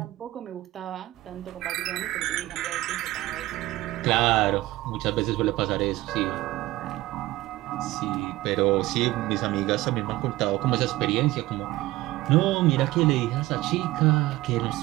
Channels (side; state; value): left; quieter; 17.5 dB